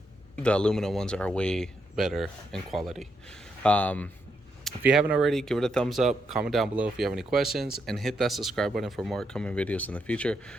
the aluminum ones are way better in quality. If you haven't already, give it a thumbs up, comment down below if you have any questions, and hit that subscribe button for more upcoming videos in the future.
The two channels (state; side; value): normal; both; correlation 0.80